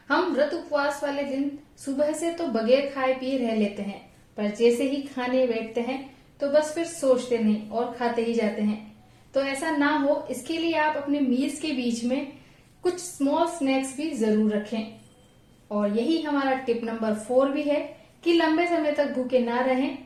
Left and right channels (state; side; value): identical; both; correlation 1.00